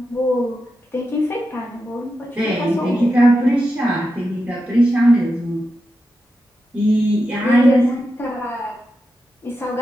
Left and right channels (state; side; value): normal; both; correlation 0.89